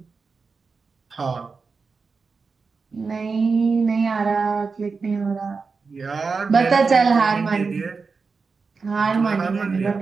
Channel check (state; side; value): quieter; left; 4.7 dB